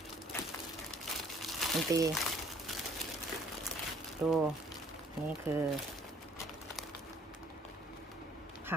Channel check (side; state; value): both; normal; correlation 0.58